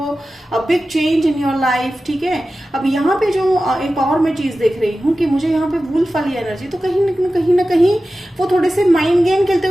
a big change in your life. ठीक है, अब यहाँ पे जो एक और मैं चीज देख रही हूँ कि मुझे यहाँ पे वुल्फ वाली एनर्जी, तो कहीं ना कहीं वो थोड़े से माइंड गेम खेलते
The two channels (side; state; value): both; normal; correlation 0.94